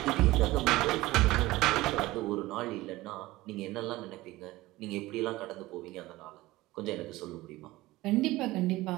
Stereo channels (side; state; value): left; quieter; 18.6 dB